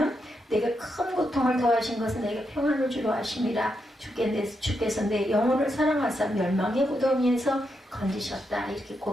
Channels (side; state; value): both; normal; correlation 0.83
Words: 내게 큰 고통을 더하신 것은 내게 평안을 주려 하심이라. 주께서 내 영혼을 사랑하사 멸망의 무덤위에서 건지셨다. 이렇게